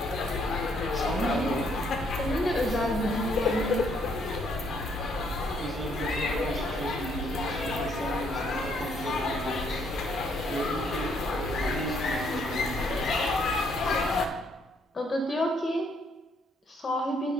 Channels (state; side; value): normal; both; correlation 0.69